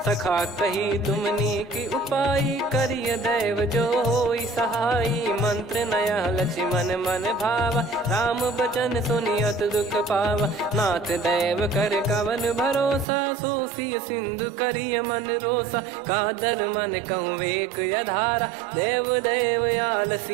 सखा कही तुमनी की उपाय करिय दैव जो होई सहाई मंत्र नया लक्ष्मण मन भावा राम बचन सुनियत दुख पावा नाथ दैव कर कवन भरोसा सोसी सिंधु करिय मन रोसा कादर मन कहूँ वेक यधारा देव देव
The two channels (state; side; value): drops out; left; at 13.1 s